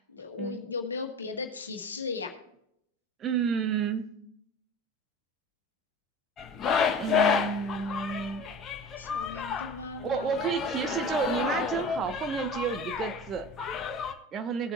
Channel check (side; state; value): both; normal; correlation 0.36